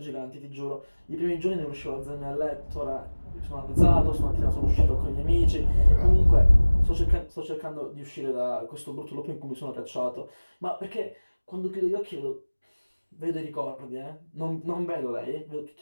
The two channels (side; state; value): both; inverted; correlation -1.00